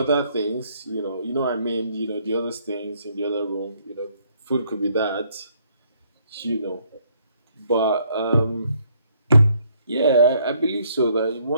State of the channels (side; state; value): both; inverted; correlation -0.68